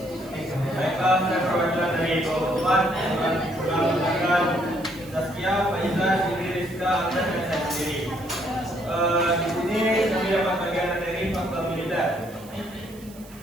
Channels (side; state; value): right; noise; hiss, 22 dB below the sound